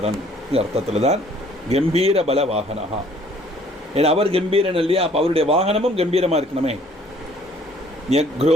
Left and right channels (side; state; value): both; normal; correlation 0.58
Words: அர்த்தத்தில் தான் கம்பீர பல வாகனஹா. ஏன்னா அவர் கம்பீரன் இல்லையா? அப்போ அவருடைய வாகனமும் கம்பீரமாக இருக்கணுமே.